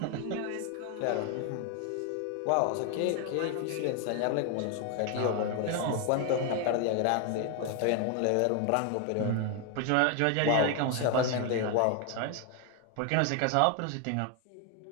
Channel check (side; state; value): both; different; correlation 0.01